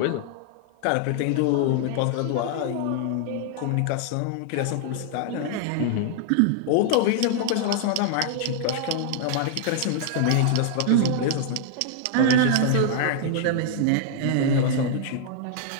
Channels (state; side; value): different; both; correlation -0.01